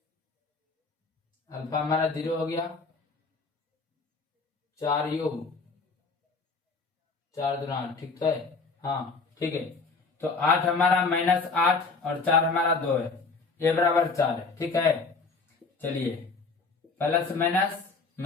अल्फा हमारा 0 हो गया, 4u 4 दूना 8। ठीक है, हाँ ठीक है, तो 8 हमारा -8 और 4 हमारा 2 है, ये बराबर 4 है। ठीक है, चलिए प्लस माइनस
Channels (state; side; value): quieter; right; 4.2 dB